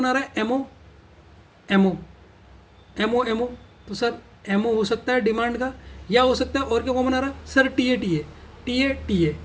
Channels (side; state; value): both; identical; correlation 1.00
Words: आ रहा है एमओ, तो सर एमओ हो सकता है डिमांड का, या हो सकता है और क्या कॉमन आ रहा है सर,